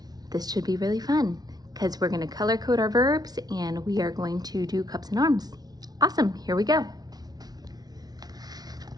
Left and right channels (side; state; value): left; late; 0.19 ms